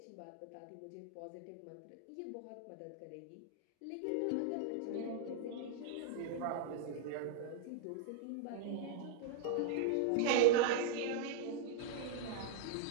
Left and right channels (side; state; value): both; different; correlation -0.01